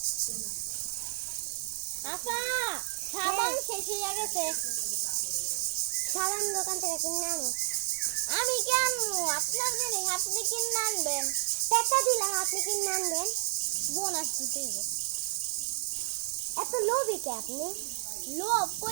আপা সাবান শেষ হয়ে গেছে সাবান দোকান থেকে কিনে আনো আমি কি আনবো আপনার জন্য আপনি কিনে আনবেন টাকা দিলাম আপনি কিনে আনবেন বোনাস দিতে হবে এত লোভী কে আপনি লোভ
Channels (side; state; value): left; silent; digital silence